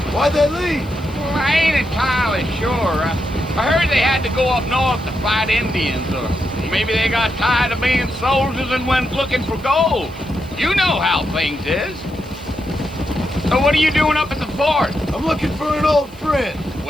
Why'd they leave? Well, I ain't entirely sure. I heard they had to go up north to fight Indians, or maybe they got tired of being soldiers and went looking for gold. You know how things is. So what are you doing up at the fort? I'm looking for an old friend.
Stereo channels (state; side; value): noise; left; hiss, 27 dB below the sound